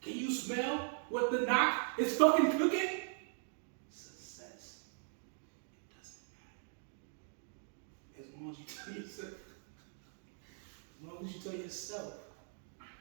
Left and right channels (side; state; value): left; silent; 51 dB below the other